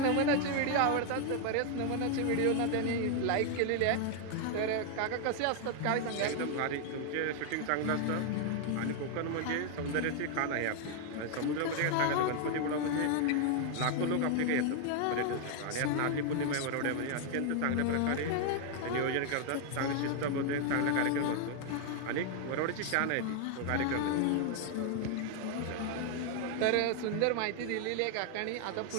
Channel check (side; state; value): both; different; correlation 0.00